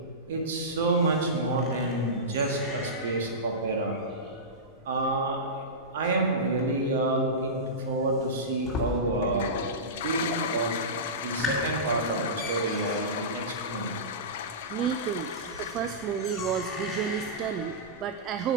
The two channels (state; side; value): normal; both; correlation -0.18